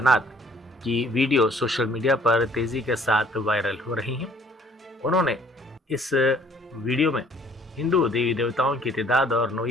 की वीडियो सोशल मीडिया पर तेज़ी के साथ वायरल हो रही हैं। उन्होंने इस वीडियो में हिंदू देवी देवताओं की तादाद और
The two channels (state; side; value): normal; both; correlation 0.57